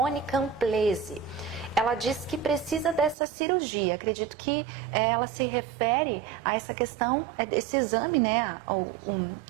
Camplese. Ela diz que precisa dessa cirurgia. Acredito que ela se refere a essa questão, esse exame, né,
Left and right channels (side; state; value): left; drops out; at 3.2 s